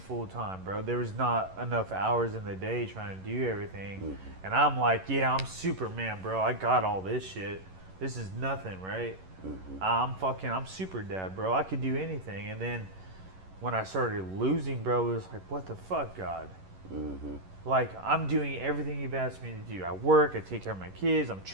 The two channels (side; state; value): left; late; 11 ms